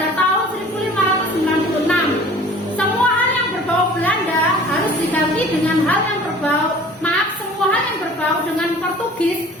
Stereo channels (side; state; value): both; normal; correlation 0.47